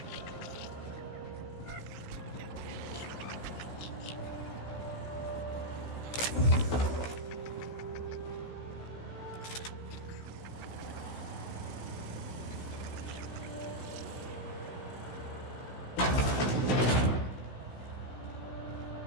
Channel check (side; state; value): right; late; 16 ms